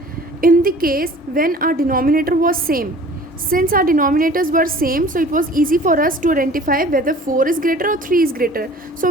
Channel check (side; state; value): both; normal; correlation 0.47